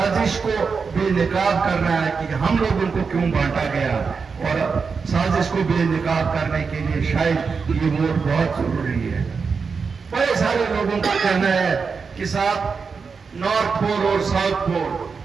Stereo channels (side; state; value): left; quieter; 5.2 dB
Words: کو بے نقاب کرنا ہے کہ ہم لوگوں کو کیوں بانٹا گیا، اور سازش کو بے نقاب کرنے کے لیے شاید یہ ووٹ بہت ضروری ہے. بڑے سارے لوگوں کا کہنا ہے کہ صاحب نارتھ پول اور ساؤتھ پول،